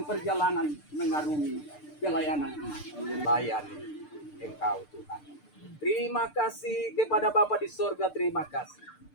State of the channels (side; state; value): right; late; 6.7 ms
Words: perjalanan mengarungi pelayanan ini. Layani Engkau Tuhan. Terima kasih kepada Bapa di sorga, terima kasih.